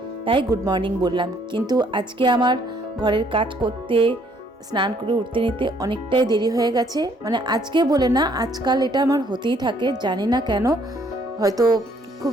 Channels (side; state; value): both; normal; correlation 0.65